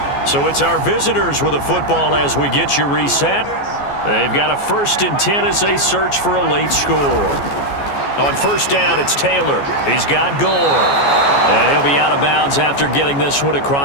So it's our visitors with a football as we get you reset. They've got a 1st and 10 as they search for a late score. On first down, it's Taylor. He's got Gore. And he'll be out of bounds after getting this one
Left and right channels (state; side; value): late; right; 14 ms